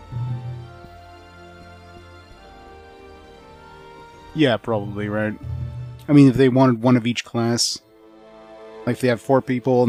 Yeah, probably, right? I mean, if they wanted one of each class, like if they have 4 people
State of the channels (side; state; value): both; identical; correlation 1.00